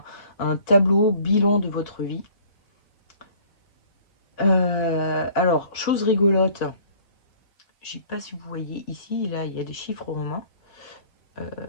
un tableau bilan de votre vie. Alors, chose rigolote, je sais pas si vous voyez ici, là, il y a des chiffres romains.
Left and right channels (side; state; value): right; late; 4.8 ms